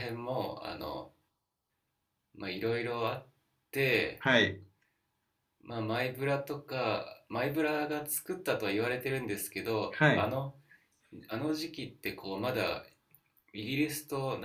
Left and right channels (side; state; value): both; identical; correlation 1.00